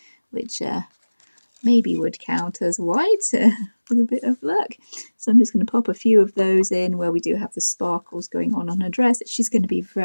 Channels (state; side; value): inverted; both; correlation -1.00